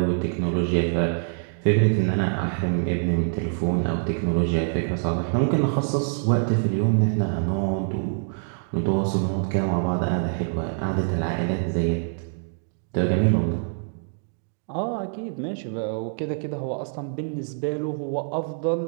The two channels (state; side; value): silent; left; digital silence